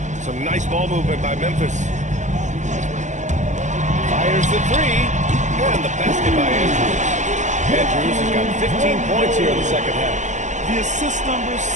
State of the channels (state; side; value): late; left; 0.35 ms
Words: Some nice ball movement by Memphis. Fires the 3. And the basket by Andrews. Andrews has got 15 points here in the second half. The assist numbers